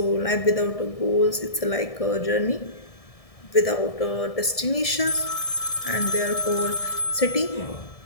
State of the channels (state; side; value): late; right; 1.7 ms